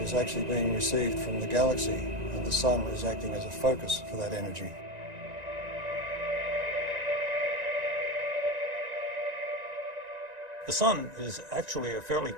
actually being received from the galaxy, and the sun is acting as a focus for that energy. The sun is actually a fairly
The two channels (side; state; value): left; late; 1.9 ms